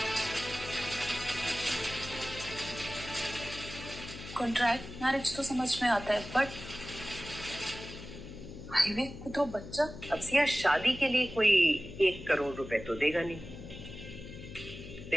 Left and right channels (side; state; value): left; noise; hum, 12 dB below the sound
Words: कॉन्ट्रैक्ट मैरिज तो समझ में आता है, बट हाईवे को तो बच्चा। अब सिया, शादी के लिए कोई 1 करोड़ रुपए तो देगा नहीं।